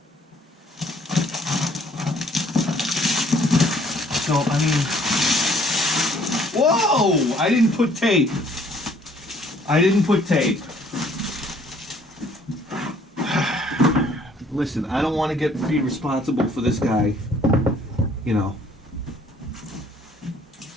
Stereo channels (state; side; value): normal; both; correlation 0.60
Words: So, I mean... Whoa! I didn't put tape. Listen, I don't want to be responsible for this guy, you know,